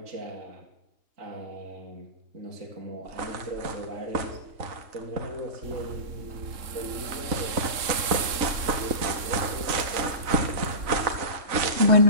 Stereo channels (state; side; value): late; left; 3.7 ms